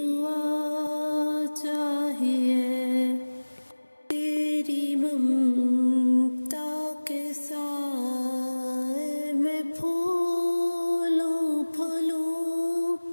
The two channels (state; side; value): inverted; both; correlation -1.00